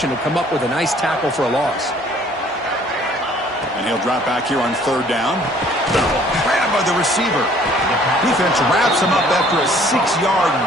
to come up with a nice tackle for a loss. And he'll drop back here on third down. Grabbed by the receiver. Defense wraps him up after a 6-yard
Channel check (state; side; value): normal; both; correlation 0.57